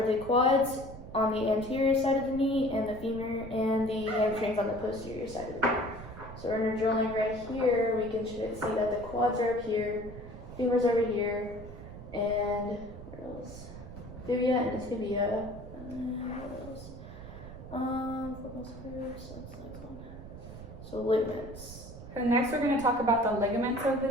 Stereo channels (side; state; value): right; noise; rumble, 13 dB below the sound